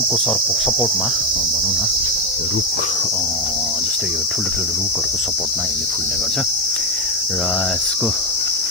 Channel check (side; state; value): both; normal; correlation 0.08